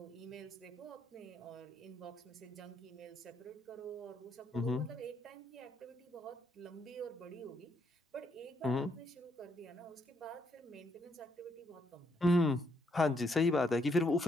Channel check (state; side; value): normal; both; correlation 0.75